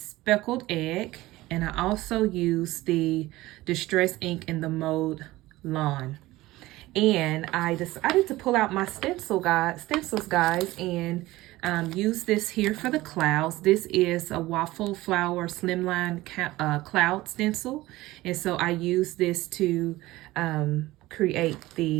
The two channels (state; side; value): quieter; left; 18.1 dB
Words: egg, and I also used the distress ink in the mode lawn. And I decided to pull out my stencils, guys, and use this here for the clouds. This is a waffle flower slimline cloud stencil, and so I use this to create